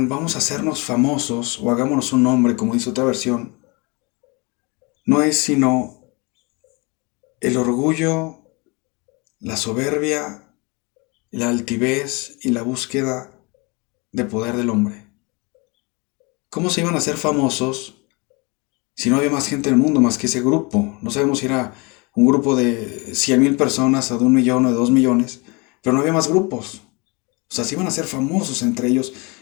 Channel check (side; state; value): right; quieter; 28.3 dB